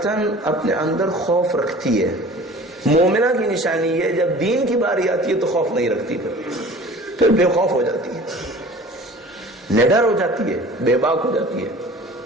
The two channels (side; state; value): both; normal; correlation 0.44